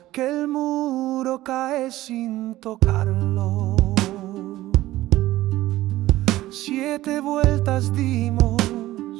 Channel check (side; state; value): left; quieter; 16.0 dB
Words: que el muro cae sin tocarlo. 7 vueltas dimos,